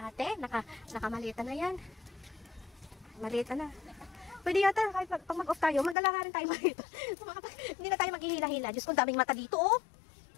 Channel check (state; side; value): drops out; right; at 6.0 s